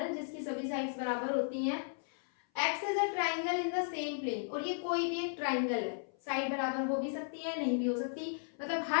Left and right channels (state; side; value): silent; right; 54 dB below the other